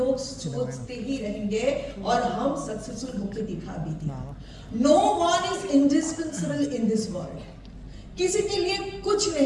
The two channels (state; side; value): identical; both; correlation 1.00